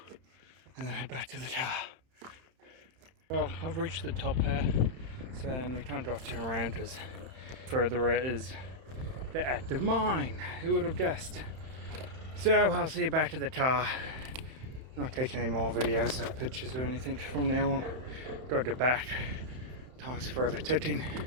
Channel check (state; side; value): late; left; 31 ms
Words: then head back to the car. Well, I've reached the top here, so we can't drop turn around because further it is the active mine. Who would have guessed? So I'll see you back to the car. Not taking any more videos or pictures or anything from now on. Gotta get back. Time's forever ticking.